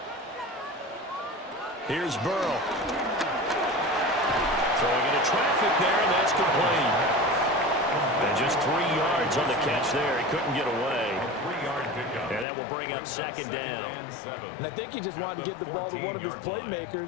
Here's Burrow. Throwing into traffic there, and that's complete. And just 3 yards on the catch there. He couldn't get away. And that will bring up 2nd down. And I think he just wanted to get the ball to one of his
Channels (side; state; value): right; drops out; at 12.5 s